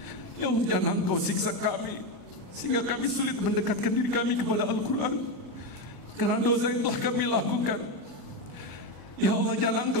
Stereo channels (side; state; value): right; late; 1.0 ms